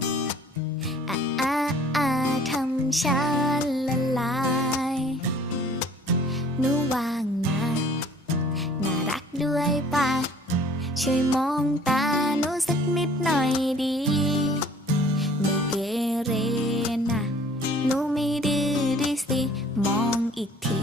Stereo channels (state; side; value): normal; both; correlation 0.53